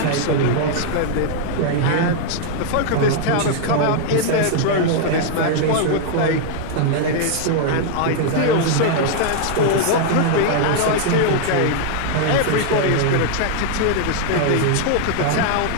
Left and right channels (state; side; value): different; both; correlation 0.00